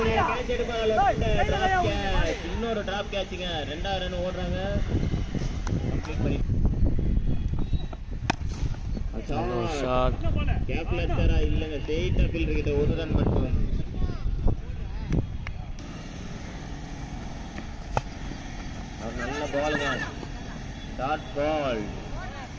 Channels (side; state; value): both; identical; correlation 1.00